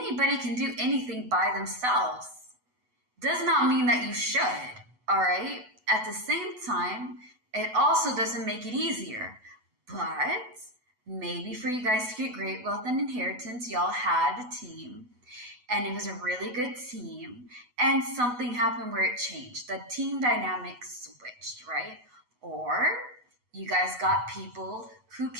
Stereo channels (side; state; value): left; late; 8.1 ms